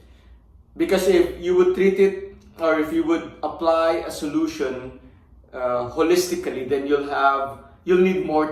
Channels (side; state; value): both; identical; correlation 1.00